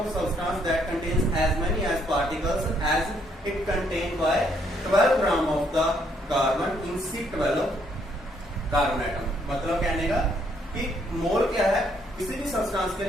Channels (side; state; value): both; normal; correlation 0.70